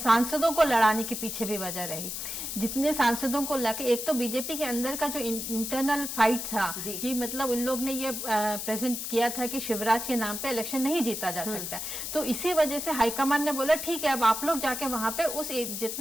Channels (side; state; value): left; noise; hiss, 5 dB below the sound